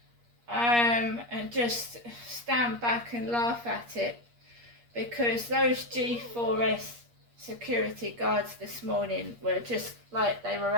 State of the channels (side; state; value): left; late; 8.5 ms